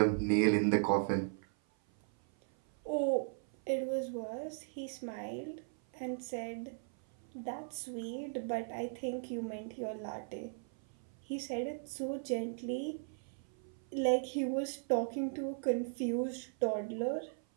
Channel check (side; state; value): left; silent; 53 dB below the other